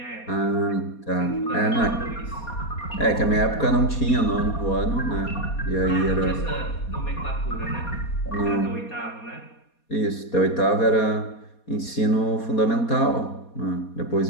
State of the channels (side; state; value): right; late; 4.2 ms